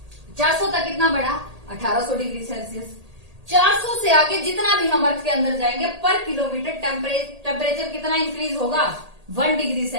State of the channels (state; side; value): late; left; 1.8 ms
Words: 400 तक कितना बढ़ा, 1800 डिग्री सेल्सियस। 400 से आगे जितना भी हम अर्थ के अंदर जाएंगे पर किलोमीटर टेम्परेचर कितना इंक्रीज होगा, 1 डिग्री